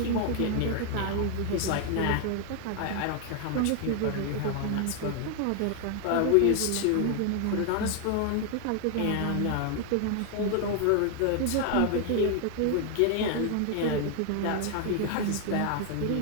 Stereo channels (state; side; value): different; both; correlation 0.00